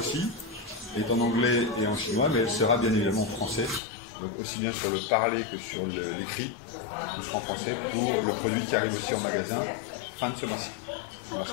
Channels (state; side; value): drops out; right; at 3.8 s